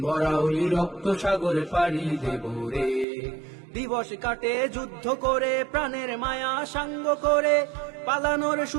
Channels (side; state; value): left; drops out; at 3.1 s